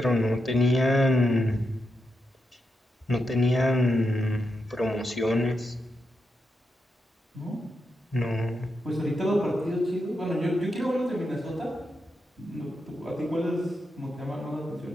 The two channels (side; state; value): both; normal; correlation 0.85